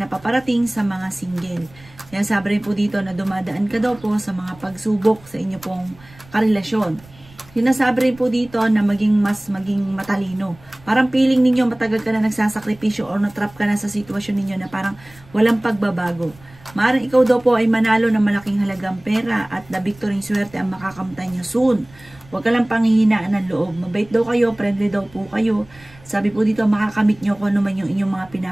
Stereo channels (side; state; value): right; noise; rumble, 25 dB below the sound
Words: paparating sa mga single. Yan sabi rin po dito na dumadaan ka daw po sa mga pagsubok sa inyo pong karelasyon. Sinasabi rin po dito na maging matalino. Parang feeling ninyo matagal ka na nagsasakripisyo o natrap ka na sa sitwasyon ninyo na parang walang pagbabago. Maaaring ikaw daw po ay manalo ng malaking halagang pera at the victory swerte ang makakamtan nyo soon. Huwag ka lang panghihinaan ng loob. Mabait daw kayo, friendly daw po kayo. Sabi po dito, makakamit nyo kung ano man yung inyong mga